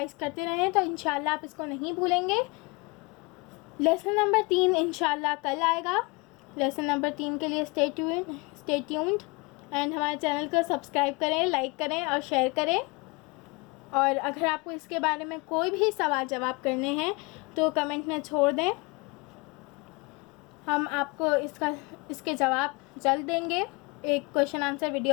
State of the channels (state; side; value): quieter; right; 27.6 dB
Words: करते रहें, तो इंशाल्लाह आप इसको नहीं भूलेंगे। लेसन नंबर 3 इंशाल्लाह कल आएगा। लेसन नंबर 3 के लिए स्टे ट्यून्ड एंड हमारे चैनल को सब्सक्राइब करें, लाइक करें और शेयर करें। और अगर आपको इसके बारे में कोई भी सवाल जवाब करने हैं तो कमेंट में छोड़ दें, हम आपको इसके जवाब जल्द देंगे एक क्वेश्चन आंसर